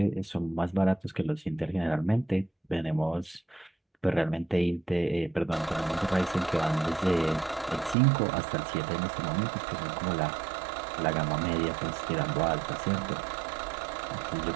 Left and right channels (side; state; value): left; drops out; at 8.0 s